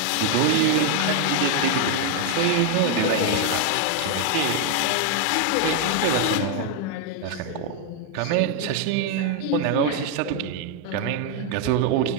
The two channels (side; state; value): both; different; correlation 0.00